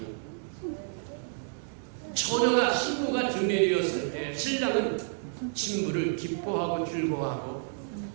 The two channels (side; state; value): left; silent; digital silence